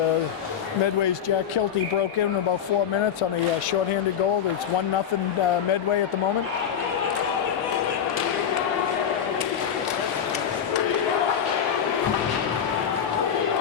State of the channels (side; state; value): right; quieter; 8.4 dB